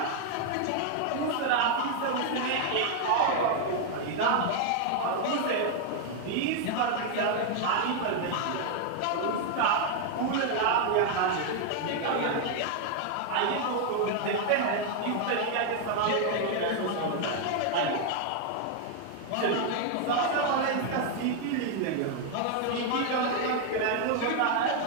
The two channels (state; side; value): different; both; correlation 0.00